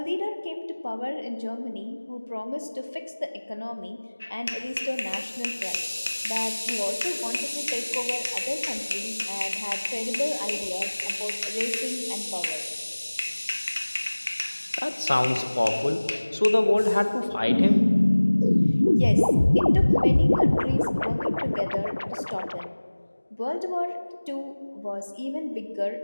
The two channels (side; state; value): both; inverted; correlation -1.00